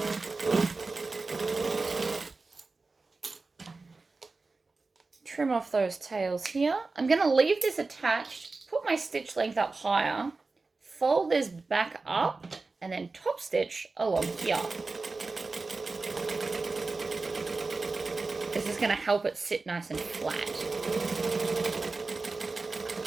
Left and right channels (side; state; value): left; quieter; 3.8 dB